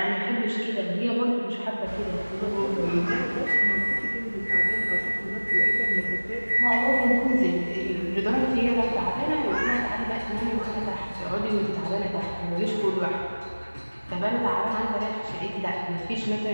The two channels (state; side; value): inverted; both; correlation -1.00